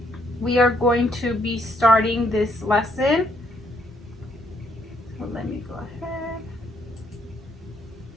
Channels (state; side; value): normal; both; correlation 0.70